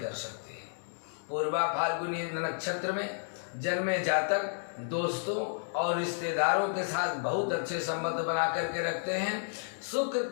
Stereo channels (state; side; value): silent; right; digital silence